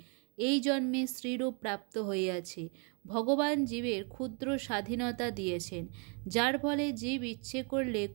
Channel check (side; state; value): left; quieter; 36.4 dB